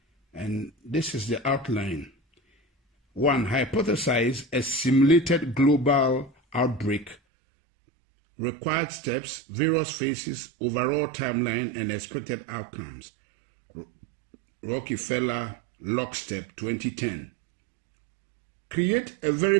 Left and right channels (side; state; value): left; drops out; at 7.2 s